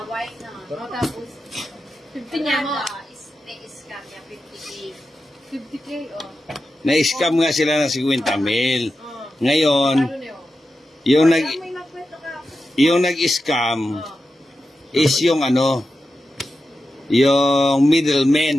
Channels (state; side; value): normal; both; correlation 0.90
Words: Tapos, 50 niya mo. Na-scam niya, 50K. 50K, oh. Na-scam nga sila ng 50,000. Ngayon, yung nag-scam is yung yung